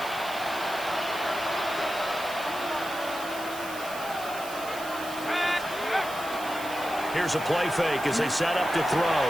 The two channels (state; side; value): noise; right; hiss, 14 dB below the sound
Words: Here's a play fake as they set up to throw.